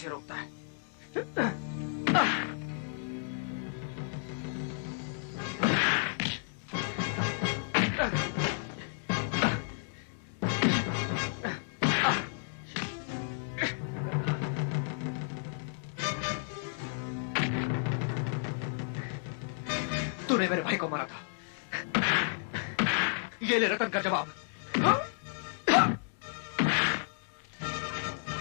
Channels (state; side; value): silent; right; digital silence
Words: रोकता है। तूने मेरे भाई को मारा था, ये ले रतन का जवाब।